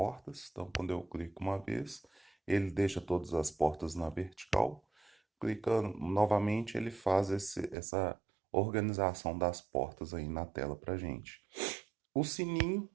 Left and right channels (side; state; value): left; drops out; at 7.8 s